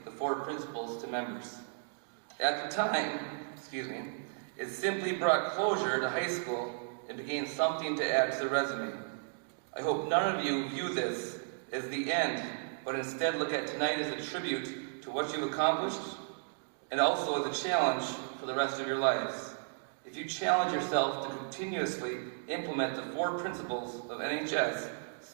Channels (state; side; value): silent; left; digital silence